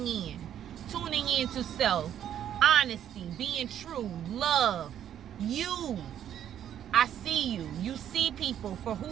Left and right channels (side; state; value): left; quieter; 10.2 dB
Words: in to self, honesty, being true, love, you. I see you. You see people for